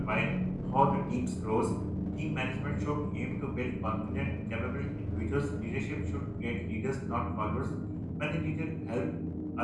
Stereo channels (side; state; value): both; identical; correlation 1.00